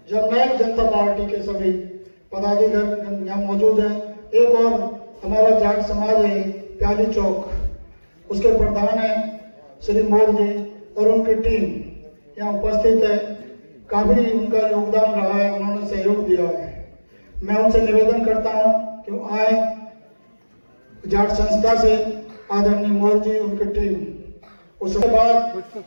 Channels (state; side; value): inverted; both; correlation -1.00